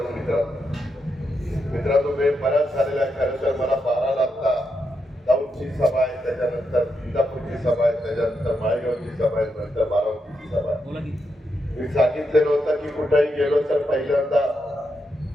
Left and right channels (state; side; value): normal; both; correlation 0.83